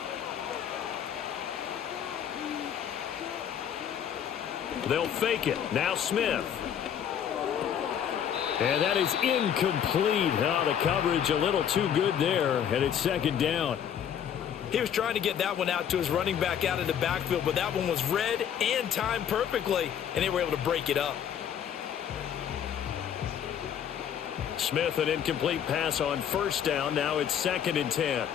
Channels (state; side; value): quieter; right; 9.0 dB